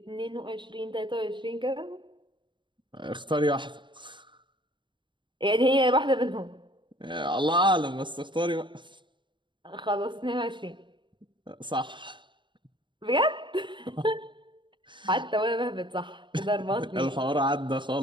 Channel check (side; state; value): left; late; 0.23 ms